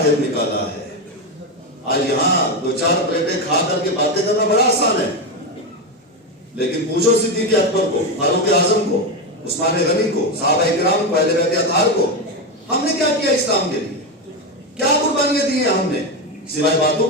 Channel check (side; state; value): both; normal; correlation 0.12